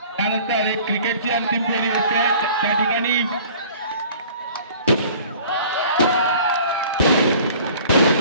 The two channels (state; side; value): inverted; both; correlation -0.48